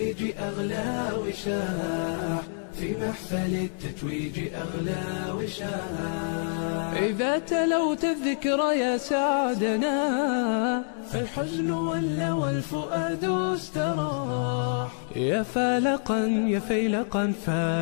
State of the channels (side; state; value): right; silent; digital silence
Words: أغلى وشاح، في محفل التتويج أغلى وشاح. إذا تلوت الذكر يا سعدنا، فالحزن ولى والفؤاد استراح، يا فالقا يا فيلقا